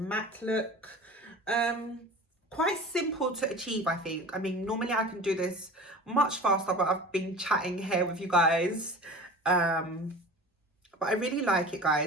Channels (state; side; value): normal; both; correlation 0.37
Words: look. quite simple to achieve, I think. I mean, normally I can do this much faster, but I've been chatting here with you guys. But I really like it,